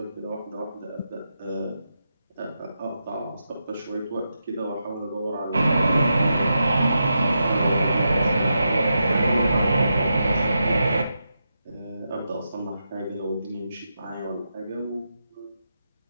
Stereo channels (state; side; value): inverted; both; correlation -0.87